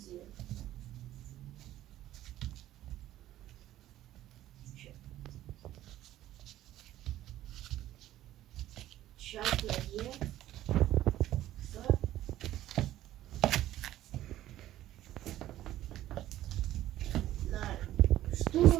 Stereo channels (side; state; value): left; quieter; 13.8 dB